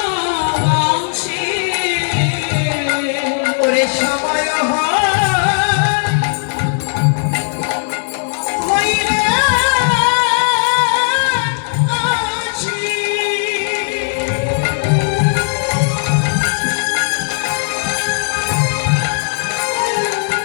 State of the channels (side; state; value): right; silent; digital silence